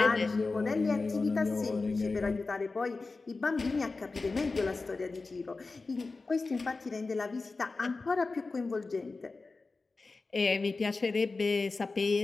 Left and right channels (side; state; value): right; quieter; 3.8 dB